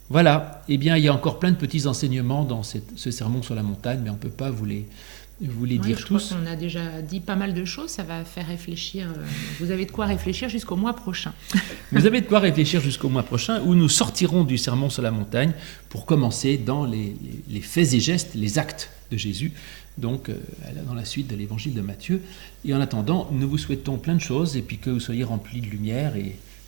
Voilà, eh bien il y a encore plein de petits enseignements dans ce sermon sur la montagne, mais on ne peut pas vous les dire tous. Je crois qu'on a déjà dit pas mal de choses, ça va faire réfléchir. Vous avez de quoi réfléchir jusqu'au mois prochain. Vous avez de quoi réfléchir jusqu'au mois prochain, où nous sortirons du sermon sur la montagne pour commencer dans les faits et gestes, les actes de Jésus, donc dans la suite de l'évangile de Matthieu. Et en attendant, nous vous souhaitons plein de choses, et puis que vous soyez remplis de lumière et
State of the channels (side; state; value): left; quieter; 31.8 dB